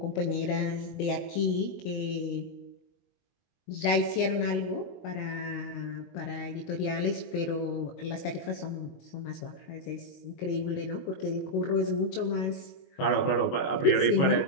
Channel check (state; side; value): late; right; 22 ms